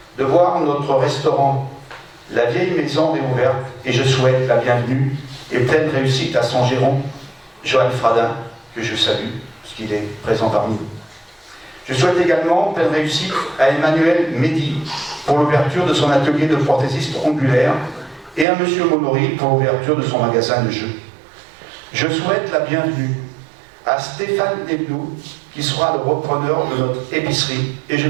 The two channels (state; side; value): drops out; left; at 18.4 s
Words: de voir notre restaurant, la vieille maison réouverte, et je souhaite la bienvenue et pleine réussite à son gérant, Johan Fradin, que je salue, parce qu'il est présent parmi nous. Je souhaite également pleine réussite à Emmanuel Mehdi pour l'ouverture de son atelier de prothésiste ongulaire et à M. Monory pour l'ouverture de son magasin de jeux. Je souhaite la bienvenue à Stéphane Desbloux, qui sera le repreneur de notre épicerie, et je